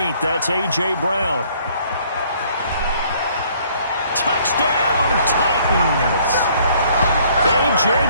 That's A.J. Brown. Touchdown, Titans. A.J.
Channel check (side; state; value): both; inverted; correlation -0.61